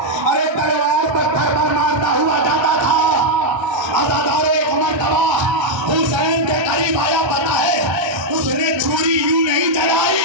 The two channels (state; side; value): late; left; 1.3 ms